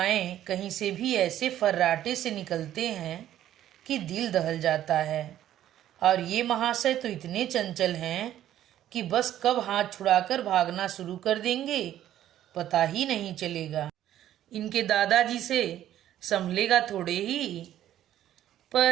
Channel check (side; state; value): left; quieter; 12.0 dB